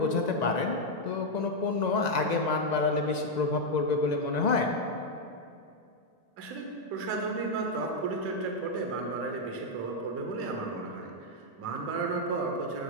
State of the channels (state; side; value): late; right; 1.9 ms